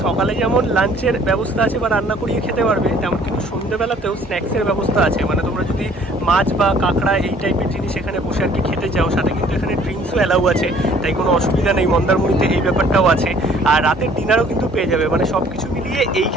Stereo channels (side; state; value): both; normal; correlation 0.56